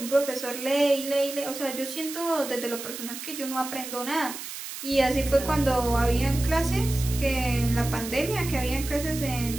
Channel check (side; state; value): right; noise; hiss, 9 dB below the sound